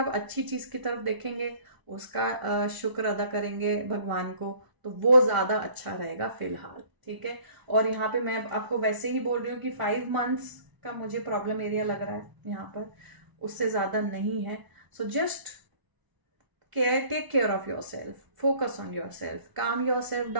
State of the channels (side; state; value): left; late; 1.0 ms